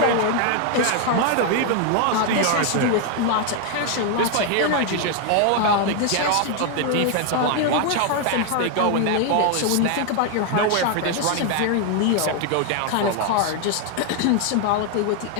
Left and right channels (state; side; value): different; both; correlation 0.00